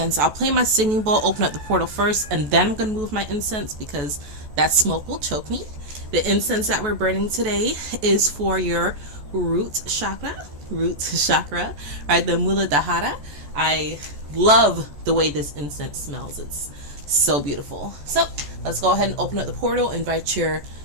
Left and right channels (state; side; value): late; left; 14 ms